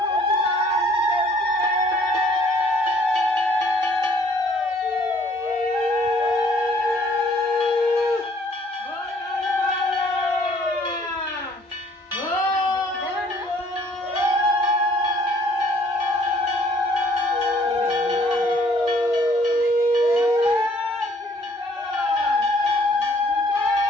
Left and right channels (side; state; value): both; normal; correlation 0.60